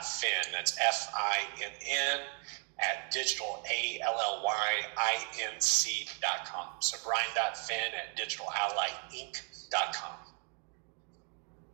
That's FINN at digitalallyinc.com. So Brian.Finn at digitalallyinc.com.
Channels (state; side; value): quieter; left; 35.0 dB